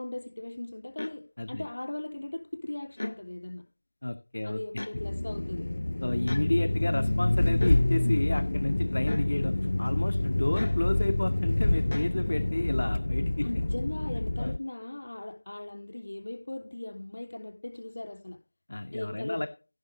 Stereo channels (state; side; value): inverted; both; correlation -1.00